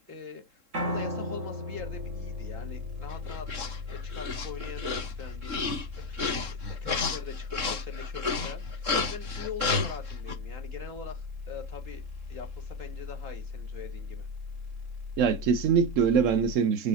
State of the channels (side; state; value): left; late; 3.7 ms